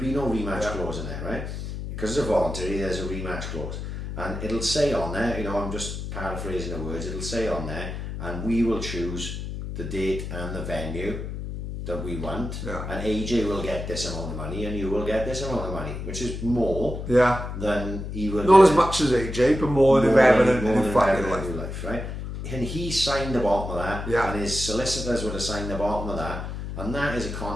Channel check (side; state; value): left; noise; hum, 6 dB below the sound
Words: no rematch clause in there, right? Because it's a voluntary, there's a rematch clause. And it'll say on there, I'm just paraphrasing the words, it'll say on there, and we will choose the date and the venue that we want, and AJ will get this amount of money and you will get this amount of money, which is more than he will not as much as AJ, but more than ever in his fucking life, right? And he signed the bottom of that, and his solicitors would have signed the bottom of that, and that is a